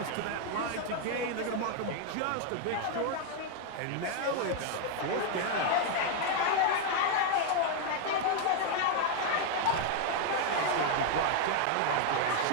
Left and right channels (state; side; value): different; both; correlation 0.00